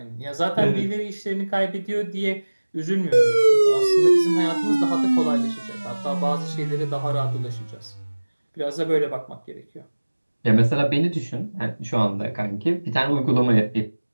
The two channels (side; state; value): both; inverted; correlation -1.00